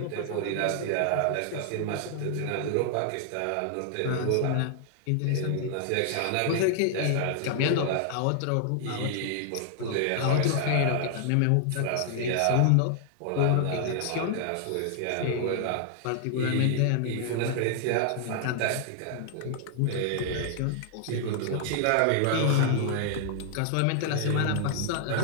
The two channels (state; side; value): different; both; correlation 0.00